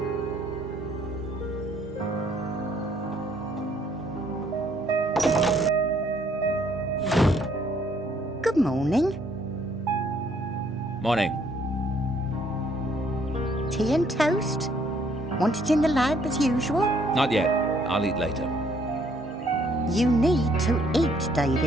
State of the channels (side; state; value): both; normal; correlation 0.66